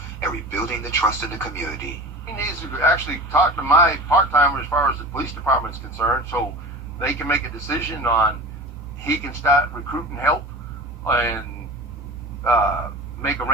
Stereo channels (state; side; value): normal; both; correlation 0.35